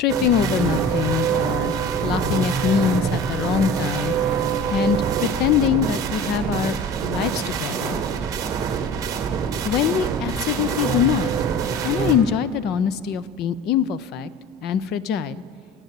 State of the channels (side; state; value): both; normal; correlation 0.38